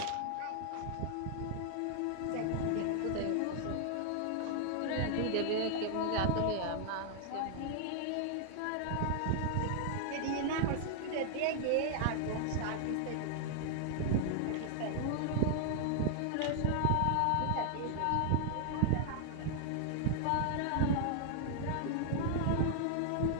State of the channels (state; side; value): different; both; correlation 0.00